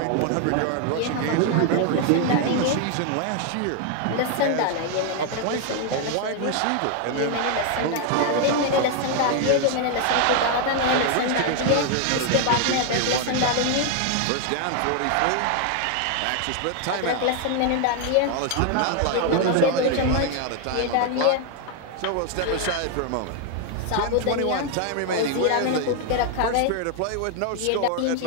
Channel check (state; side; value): different; both; correlation 0.00